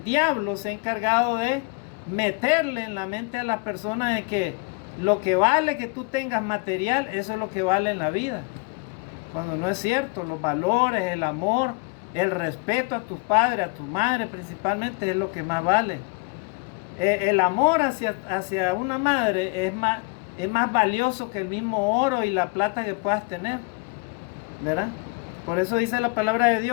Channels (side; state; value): right; quieter; 30.2 dB